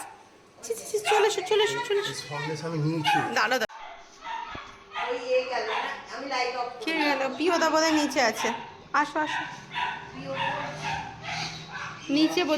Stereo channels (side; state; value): both; identical; correlation 1.00